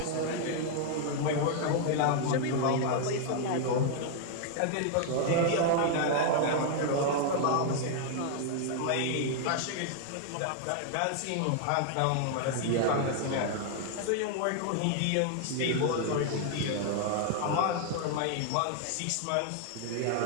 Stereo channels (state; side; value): different; both; correlation 0.00